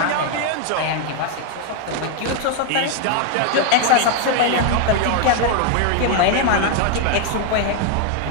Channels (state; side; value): different; both; correlation 0.00